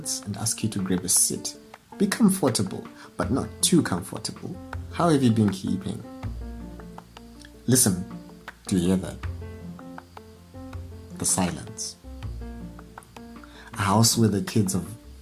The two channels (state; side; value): identical; both; correlation 1.00